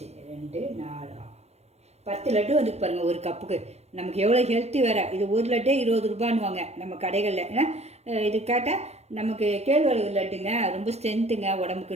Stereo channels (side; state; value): left; late; 0.31 ms